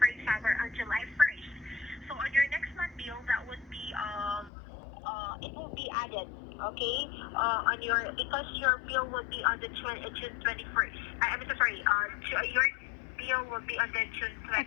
example, on July 1st. So on your next month bill, that would be it will be added, okay? On your because your bill would be on the June 21st. I'm so sorry. Your bill will be on the June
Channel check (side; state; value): right; drops out; at 4.5 s